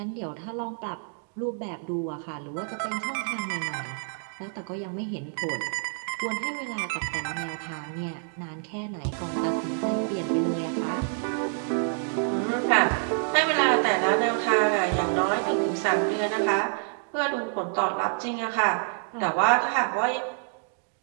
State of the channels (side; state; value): left; silent; 60 dB below the other